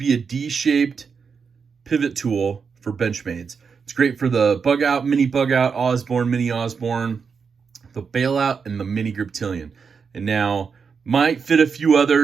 a D-shaped pivot tool for Benchmades. It's great for the bug out, mini bug out, Osborne, mini Osborne, the bailout, and the mini Griptilian. And now, might fit a few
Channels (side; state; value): left; quieter; 5.8 dB